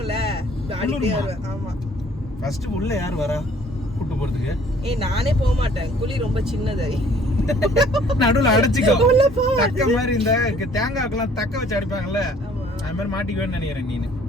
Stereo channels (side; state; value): both; normal; correlation 0.57